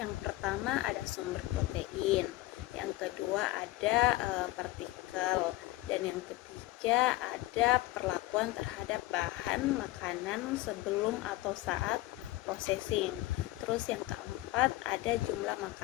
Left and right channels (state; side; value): quieter; right; 17.7 dB